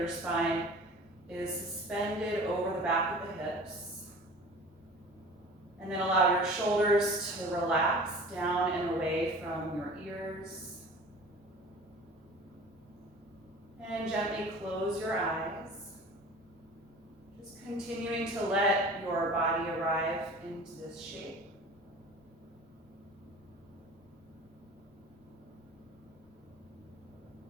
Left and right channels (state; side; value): noise; left; rumble, 30 dB below the sound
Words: spine is suspended over the back of the hips. And then allow your shoulders to relax down and away from your ears. And gently close your eyes. Just continuing to let your body arrive into this shape.